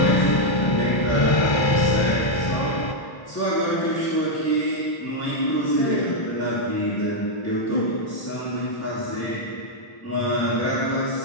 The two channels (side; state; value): right; late; 1.3 ms